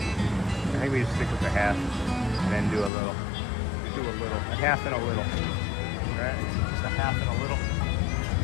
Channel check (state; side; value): drops out; right; at 2.9 s